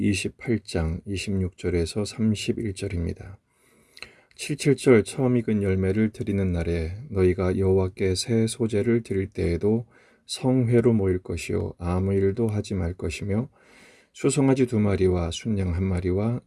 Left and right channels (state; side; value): identical; both; correlation 1.00